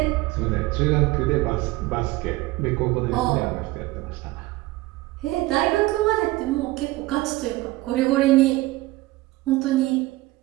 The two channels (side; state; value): left; quieter; 19.2 dB